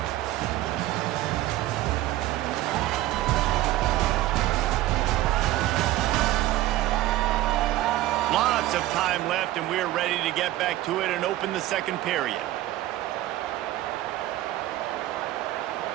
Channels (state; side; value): quieter; left; 15.6 dB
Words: Lots of time left, and we're ready to get back to it and open the second period.